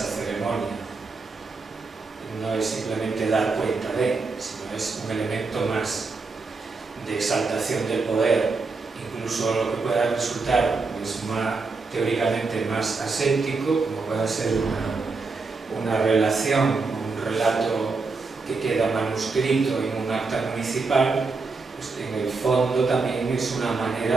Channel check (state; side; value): quieter; left; 4.1 dB